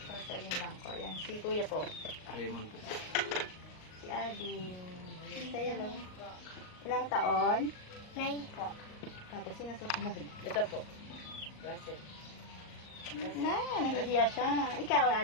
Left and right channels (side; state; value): right; late; 38 ms